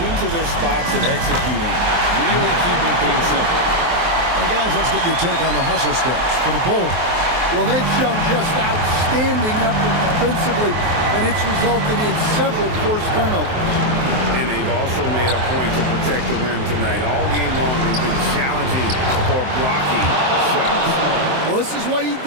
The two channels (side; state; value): left; late; 23 ms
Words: to their spots and executing, really keeping things simple. And guys, let's get your take on the hustle steps for the Bulls. Well, they've shown just outstanding effort defensively, and it's resulted in several forced turnovers. And they've also made a point to protect the rim tonight. All game long, they've been challenging or blocking shots. Well, this is what he